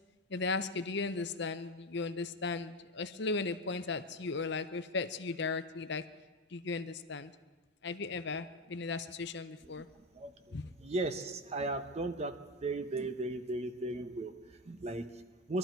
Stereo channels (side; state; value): both; normal; correlation 0.15